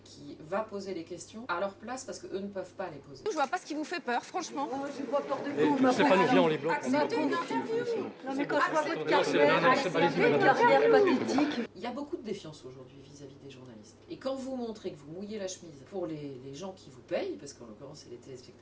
va poser les questions à leur place parce qu'eux ne peuvent pas les poser. Je vois pas ce qui vous fait peur, franchement. Oh, j'ai pas peur de vous. C'est pas nous bien, on les bloque. C'était une interview. Non mais quand je vois votre carrière pathétique. Il y a beaucoup de défiance aujourd'hui vis-à-vis des journalistes. Et quand vous montrez que vous mouillez la chemise pour les gens qui vous payent, parce qu'en l'occurrence c'est les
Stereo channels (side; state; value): both; identical; correlation 1.00